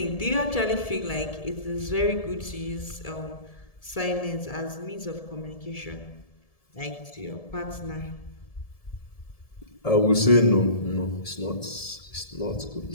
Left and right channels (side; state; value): right; late; 1.7 ms